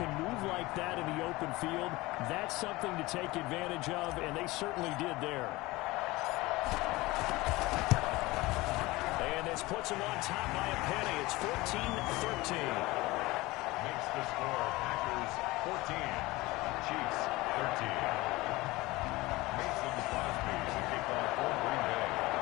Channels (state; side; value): quieter; right; 20.6 dB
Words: can move like that in the open field, that's something to take advantage of, and they certainly did there. And this puts them on top by a penny. It's 14-13. Makes the score Packers 14, Chiefs 13. Mason Crosby to kick off for Green Bay.